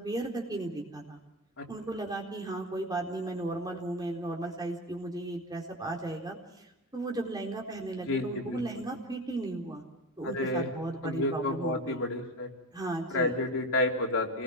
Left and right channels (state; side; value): normal; both; correlation 0.23